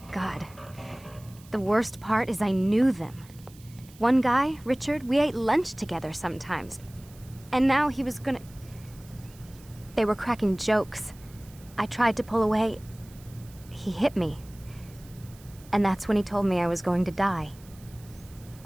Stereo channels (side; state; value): right; noise; hiss, 24 dB below the sound